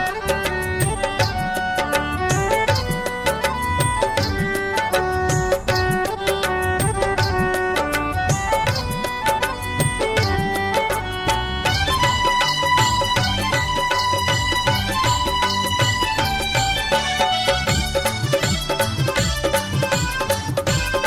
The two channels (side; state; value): both; identical; correlation 1.00